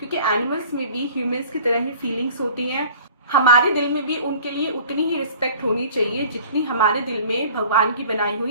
एनिमल्स में भी ह्यूमंस की तरह ही फीलिंग्स होती हैं। हमारे दिल में भी उनके लिए उतनी ही रिस्पेक्ट होनी चाहिए जितनी हमारे दिल में भगवान की बनाई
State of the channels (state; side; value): inverted; both; correlation -0.48